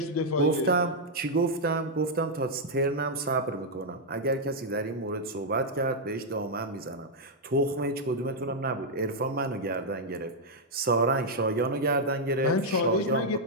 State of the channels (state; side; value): normal; both; correlation -0.03